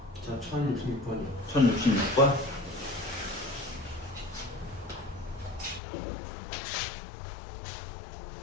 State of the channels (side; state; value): right; drops out; at 5.8 s